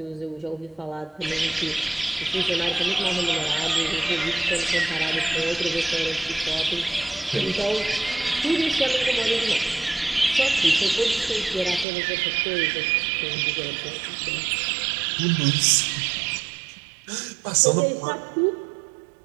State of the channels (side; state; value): left; drops out; at 11.9 s